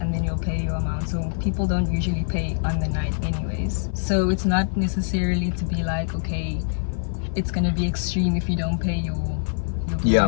and then you'll pay your amount. So people don't usually pay on the night anyways. So it's not necessarily to be like, okay, it's gonna be extreme if you don't pay your bill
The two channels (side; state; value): right; silent; 56 dB below the other